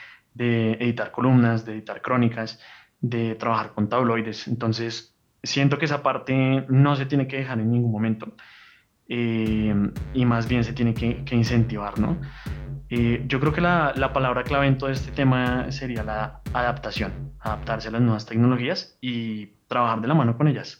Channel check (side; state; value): both; identical; correlation 1.00